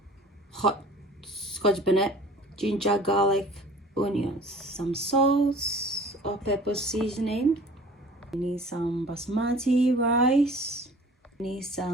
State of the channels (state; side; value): normal; both; correlation 0.46